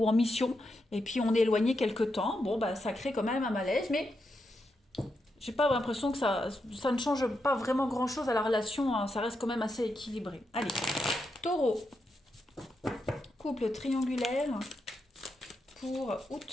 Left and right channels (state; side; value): normal; both; correlation 0.84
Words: en mission, et puis on est éloigné quelque temps. Bon, bah, ça crée quand même un malaise, mais j'ai pas l'impression que ça ne change pas vraiment grand-chose à la relation, hein, ça reste quand même assez équilibré. Allez, Taureau, couple triangulaire pour